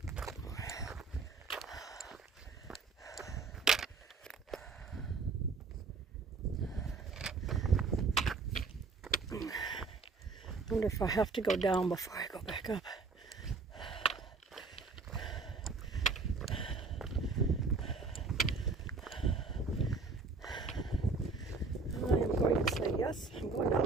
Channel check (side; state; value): left; quieter; 4.2 dB